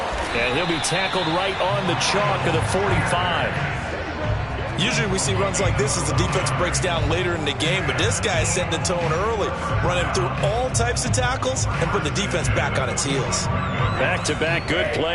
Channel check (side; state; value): both; identical; correlation 1.00